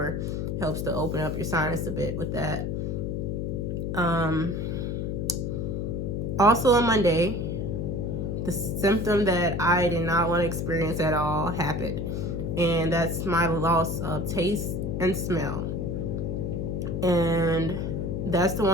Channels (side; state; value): left; noise; hum, 1 dB below the sound